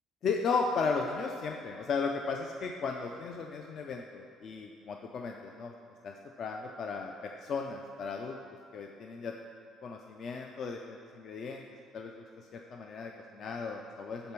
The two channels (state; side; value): quieter; right; 4.4 dB